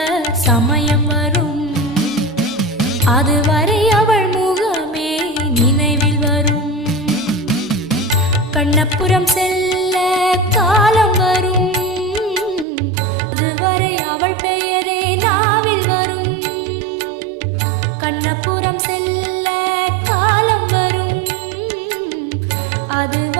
சமயம் வரும், அதுவரை அவள் முகமே நினைவில் வரும். கண்ணபுரம் செல்ல காலம் வரும், அதுவரை அவள் பெயரே நாவில் வரும். கண்ணபுரம் செல்ல காலம் வரும்,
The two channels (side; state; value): left; drops out; at 12.7 s